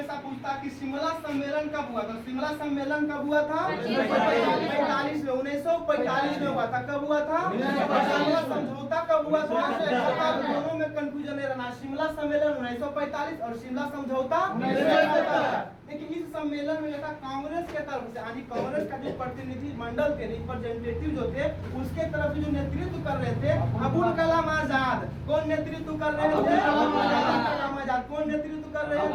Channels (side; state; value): both; identical; correlation 1.00